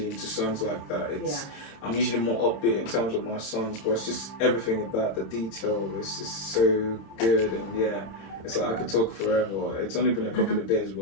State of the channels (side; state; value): right; late; 27 ms